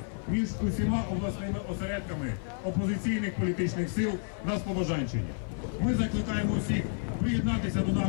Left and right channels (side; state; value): right; silent; 56 dB below the other